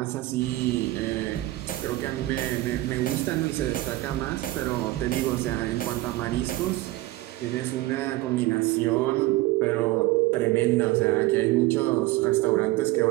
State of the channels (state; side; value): quieter; left; 18.0 dB